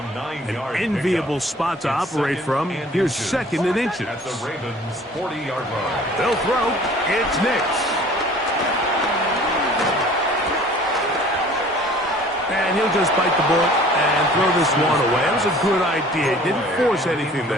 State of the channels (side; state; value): both; normal; correlation 0.50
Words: enviable spot to operate from. Here's 2nd and inches. At the Ravens' 40-yard line. They'll throw. It's Nix. And he'll just bite the bullet and throw this one away. That was a good idea. Didn't force anything